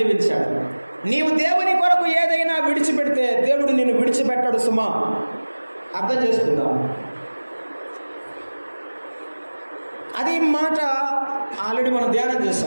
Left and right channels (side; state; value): both; inverted; correlation -1.00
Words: నీవు దేవుని కొరకు ఏదైనా విడిచిపెడితే దేవుడు నిన్ను విడిచిపెట్టాడు సుమా. అర్థం చేసుకుందాం. అది మాట ఆల్రెడీ మనం ధ్యానం